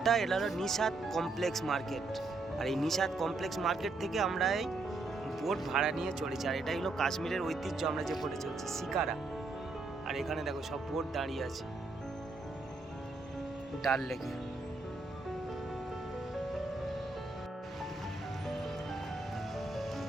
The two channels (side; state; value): left; quieter; 3.4 dB